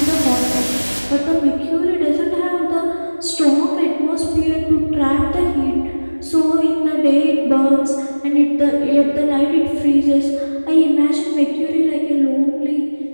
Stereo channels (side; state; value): both; inverted; correlation -1.00